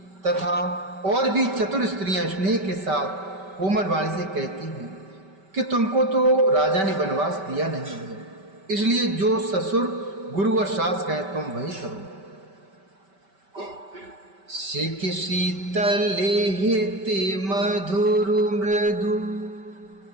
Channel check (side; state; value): left; late; 5.2 ms